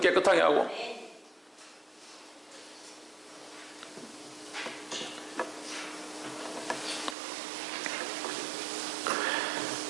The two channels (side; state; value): left; drops out; at 7.2 s